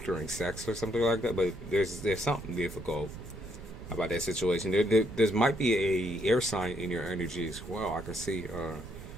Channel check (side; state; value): right; noise; rumble, 13 dB below the sound